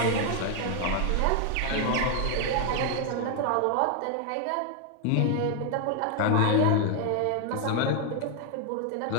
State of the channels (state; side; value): different; both; correlation 0.00